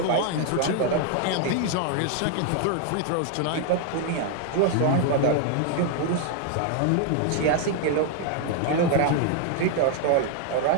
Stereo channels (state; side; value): different; both; correlation 0.00